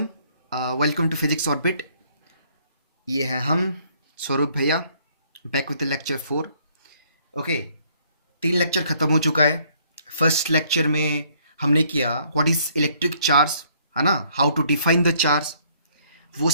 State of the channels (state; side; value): inverted; both; correlation -0.64